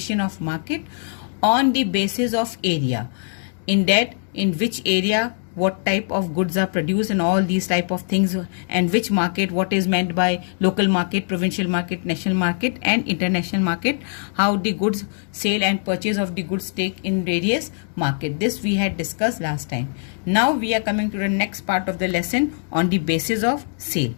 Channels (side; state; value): right; silent; 63 dB below the other